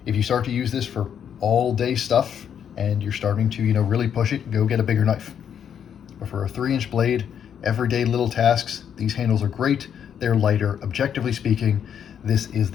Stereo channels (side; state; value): right; quieter; 8.5 dB